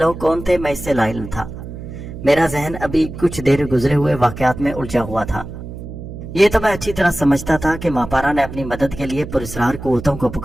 कौन थे मैं इससे लाइल्म था। मेरा जहन अभी कुछ देर गुजरे हुए वाकयात में उलझा हुआ था। ये तो मैं अच्छी तरह समझता था कि मापारा ने अपनी मदद के लिए पुरस्कार कुव्वतों को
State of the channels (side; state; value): right; noise; hum, 11 dB below the sound